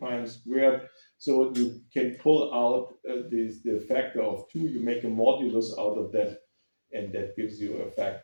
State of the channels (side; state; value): both; inverted; correlation -1.00